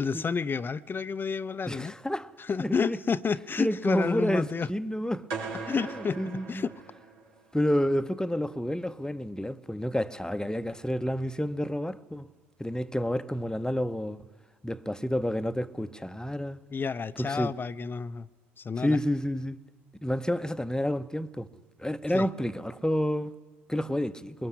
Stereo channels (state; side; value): normal; both; correlation 0.92